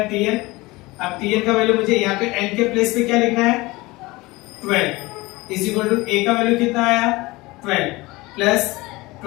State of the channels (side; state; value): right; quieter; 21.6 dB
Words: Tn। अब Tn का वैल्यू मुझे यहाँ पे n के प्लेस पे क्या लिखना है 12 इज इक्वल टू A का वैल्यू कितना आया 12 प्लस